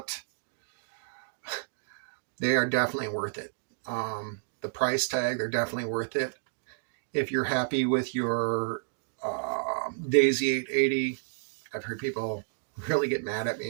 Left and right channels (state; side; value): silent; left; digital silence